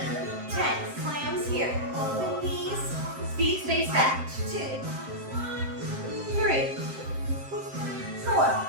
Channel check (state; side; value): late; left; 7.6 ms